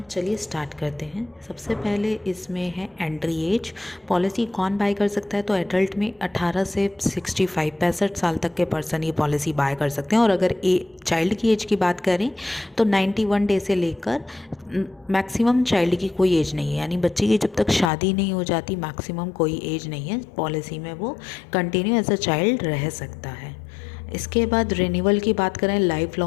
चलिए स्टार्ट करते हैं। सबसे पहले इसमें है एंट्री एज। पॉलिसी कौन बाय कर सकता है? तो एडल्ट में 18 से 65 65 साल तक के पर्सन ये पॉलिसी बाय कर सकते हैं। और अगर चाइल्ड की एज की बात करें तो 91 डे से लेकर मैक्सिमम चाइल्ड की कोई एज नहीं है, यानी बच्चे की जब तक शादी नहीं हो जाती मैक्सिमम कोई एज नहीं है पॉलिसी में, वो कंटिन्यू एज अ चाइल्ड रह सकता है। इसके बाद रिन्यूअल की बात करें, लाइफ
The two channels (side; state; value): right; drops out; at 17.9 s